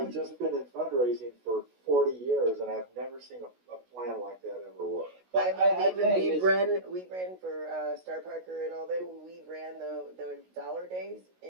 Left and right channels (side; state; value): left; late; 16 ms